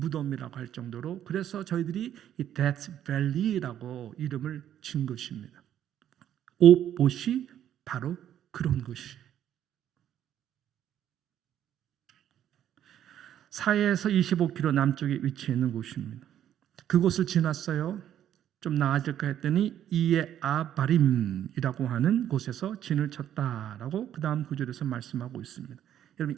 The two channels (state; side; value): quieter; left; 10.7 dB